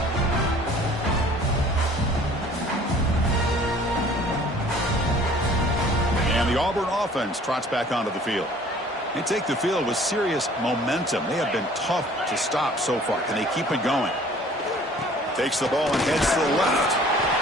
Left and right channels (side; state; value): both; normal; correlation 0.52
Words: The Auburn offense trots back onto the field. They take the field with serious momentum. They have been tough to stop so far. Can they keep it going? Takes the ball and heads to the left.